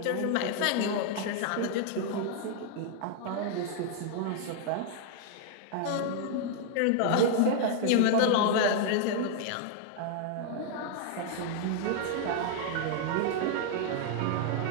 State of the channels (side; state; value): both; different; correlation 0.00